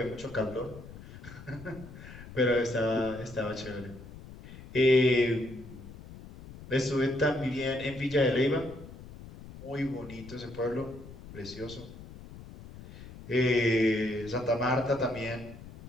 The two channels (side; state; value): left; noise; rumble, 16 dB below the sound